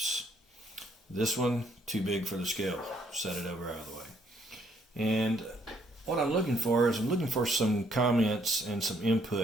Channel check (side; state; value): both; normal; correlation 0.68